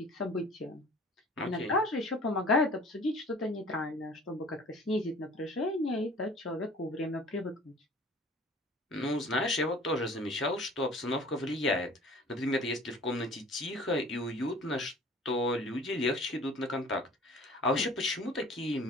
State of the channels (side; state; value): both; normal; correlation 0.47